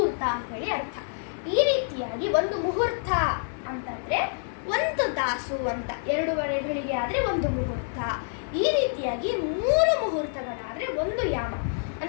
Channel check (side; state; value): right; silent; 57 dB below the other